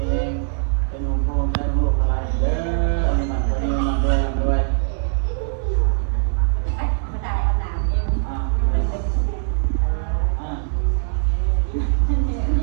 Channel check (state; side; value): silent; left; 65 dB below the other